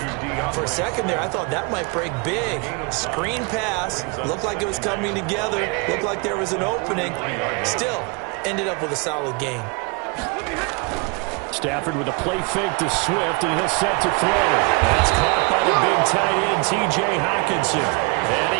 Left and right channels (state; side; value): quieter; left; 29.6 dB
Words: For a second there, I thought that might break big. Screen pass, looked like it was coming together, looked like there was an opening. Still, ended up with a solid gain. Stafford with a play fake to Swift, and he'll set to throw. That's caught by the big tight end, T.J. Hockenson. And